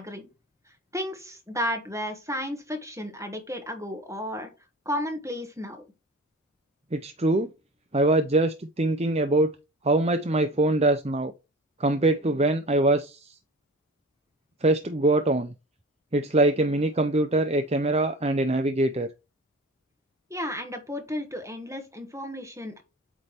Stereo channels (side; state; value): both; normal; correlation 0.36